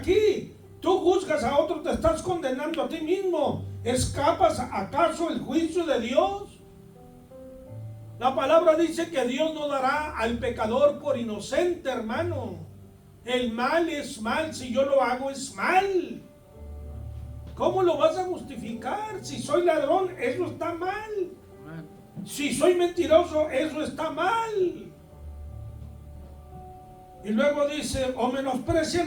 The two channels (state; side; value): identical; both; correlation 1.00